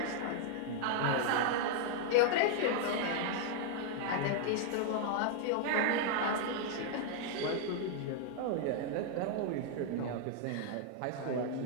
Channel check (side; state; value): both; different; correlation -0.01